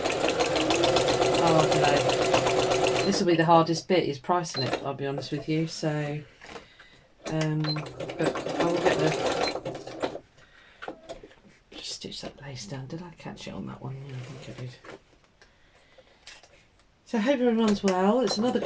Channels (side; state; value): both; identical; correlation 1.00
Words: don't know, this will be the hardest bit, is pricing it, I'll be honest with you. So but I will get the, just stitch that lace down. Did I catch it on that one? Yeah, I think I did. So I hope everyone's well. It's another